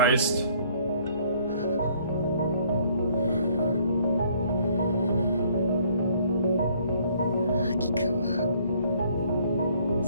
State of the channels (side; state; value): both; inverted; correlation -0.61